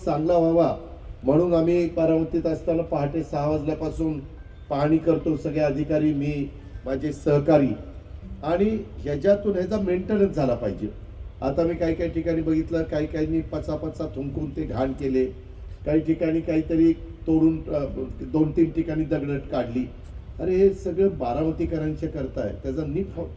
चांगला व्हावा म्हणून आम्ही बारामतीत असताना पहाटे 6 वाजल्यापासून पाहणी करतो, सगळे अधिकारी, मी, माझे सहकारी, आणि ह्याच्यातून ह्याचा मेंटेनन्स झाला पाहिजे। आता मी काही ठिकाणी बघितलं, काही पचापचा थुंकून ते घाण केले, काही ठिकाणी काहीतरी तोडून 2-3 ठिकाणी दगडट काढली। अरे हे सगळं बारामतीकरांच्या करताय, त्याचा नीट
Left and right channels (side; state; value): both; identical; correlation 1.00